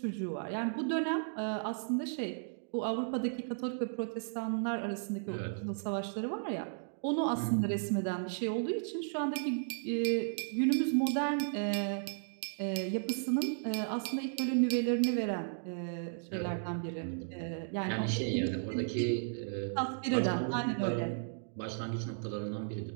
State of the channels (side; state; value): left; silent; digital silence